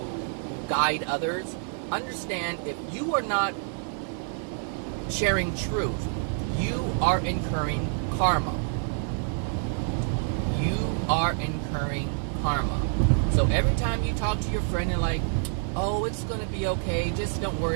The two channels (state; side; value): silent; left; 56 dB below the other